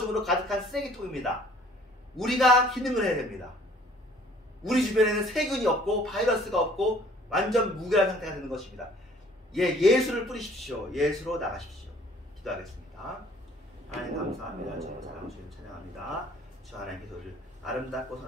가득한 쓰레기통입니다. 우리가 기능을 해야 됩니다. 우리 주변에는 세균이 없고 바이러스가 없고 완전 무결한 상태가 되는 것입니다. 예수를 뿌리십시오. 예수로 나가십시오. 기도하겠습니다. 하나님 감사합니다. 주님 사랑 주님 찬양합니다. 주 하나님께서 우리를 아름답고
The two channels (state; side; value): normal; both; correlation 0.56